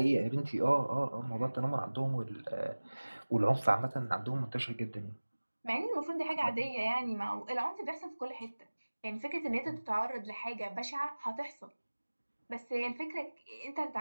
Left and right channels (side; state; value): both; inverted; correlation -1.00